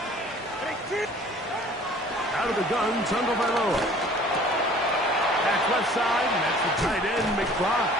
Out of the gun, Tagovailoa. Back left side, and that's the tight end, McBride.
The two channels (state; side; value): normal; both; correlation 0.50